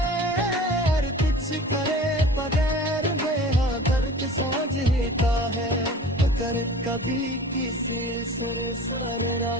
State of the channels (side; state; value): both; normal; correlation 0.41